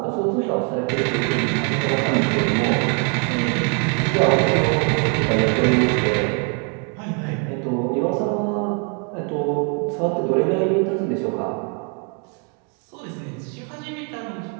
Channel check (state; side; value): quieter; left; 38.4 dB